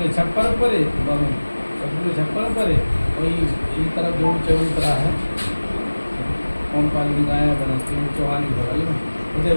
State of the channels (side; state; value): both; inverted; correlation -1.00